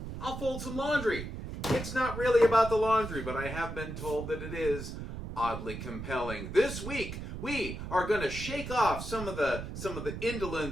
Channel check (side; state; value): right; noise; rumble, 7 dB below the sound